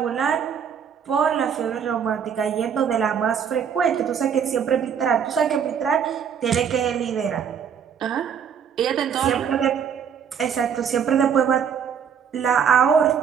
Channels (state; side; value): quieter; left; 7.5 dB